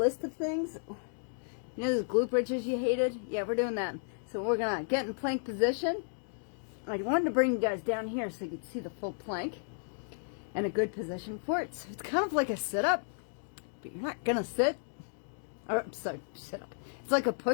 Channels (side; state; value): right; silent; digital silence